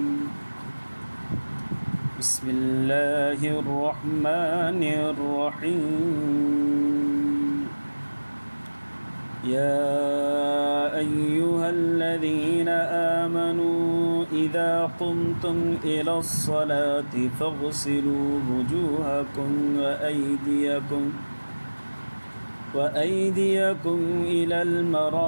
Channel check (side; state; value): both; inverted; correlation -1.00